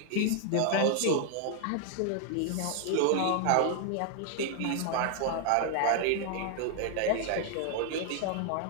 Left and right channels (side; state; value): both; different; correlation 0.00